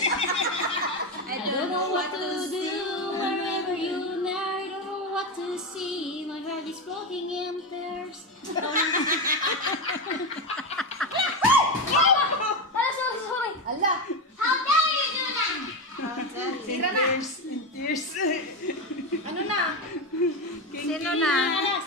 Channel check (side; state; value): both; normal; correlation 0.14